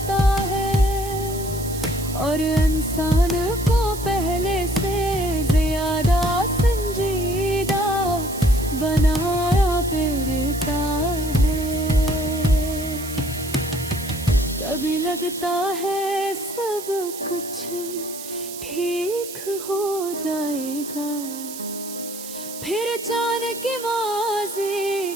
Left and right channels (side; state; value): right; noise; hiss, 11 dB below the sound